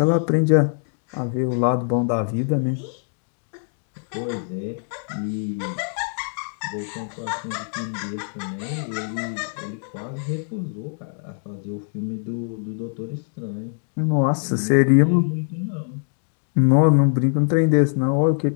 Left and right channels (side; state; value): right; silent; 63 dB below the other